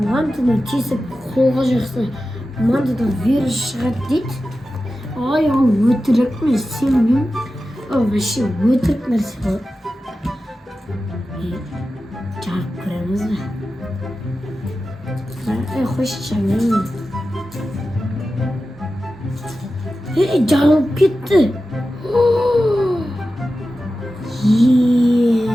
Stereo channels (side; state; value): both; normal; correlation 0.93